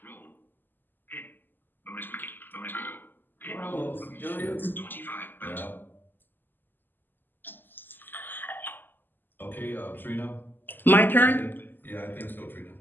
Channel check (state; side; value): late; right; 0.091 ms